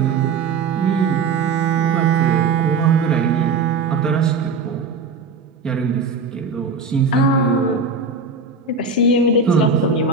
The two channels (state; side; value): quieter; left; 4.6 dB